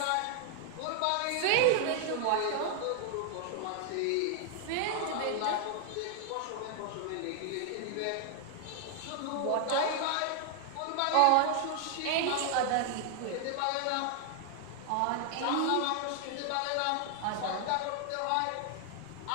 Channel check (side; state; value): both; different; correlation 0.00